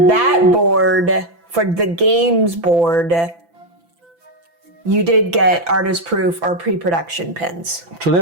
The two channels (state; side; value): late; left; 5.9 ms